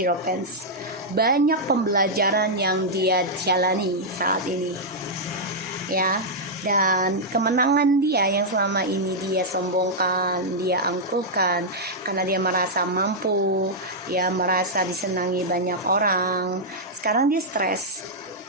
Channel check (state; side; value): normal; both; correlation -0.06